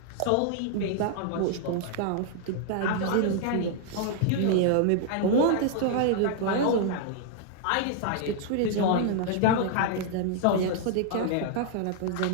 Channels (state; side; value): different; both; correlation 0.00